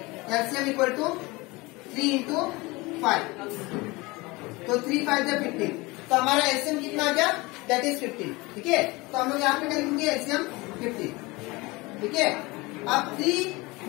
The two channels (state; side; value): quieter; right; 23.3 dB